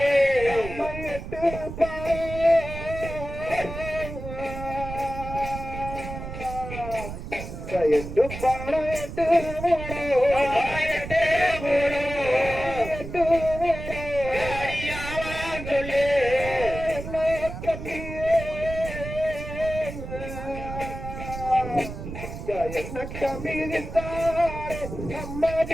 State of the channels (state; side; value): noise; right; rumble, 9 dB below the sound